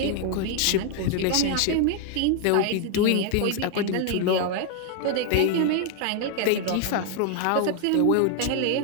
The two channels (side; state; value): both; different; correlation 0.00